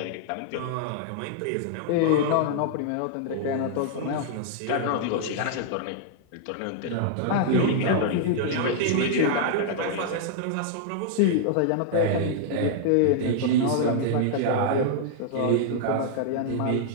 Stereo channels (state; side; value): different; both; correlation -0.01